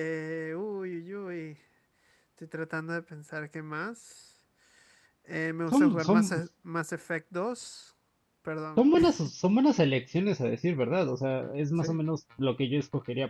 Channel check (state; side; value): identical; both; correlation 1.00